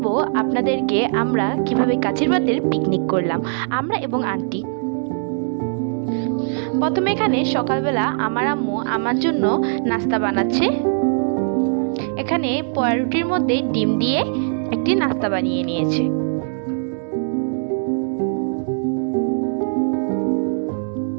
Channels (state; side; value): silent; left; 65 dB below the other